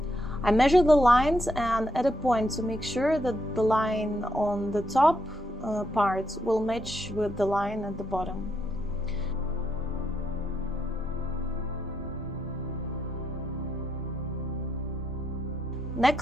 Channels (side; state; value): both; normal; correlation 0.79